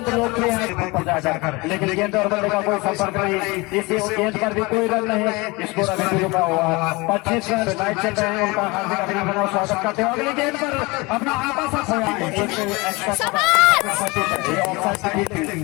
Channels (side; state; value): right; quieter; 24.6 dB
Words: लोकप्रिय है जाकर, लेकिन गेंद और बल्ले का कोई संपर्क नहीं, इसी गेंद पर भी कोई रन नहीं। स्कोर अभी भी रुका हुआ 25 रन मैच चल रहे हैं। उनका हार्दिक अभिनंदन और स्वागत करते हैं। अगली गेंद पर अपना